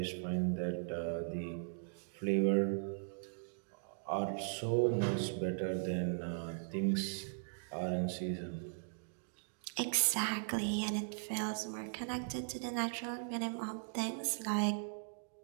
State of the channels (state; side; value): silent; left; digital silence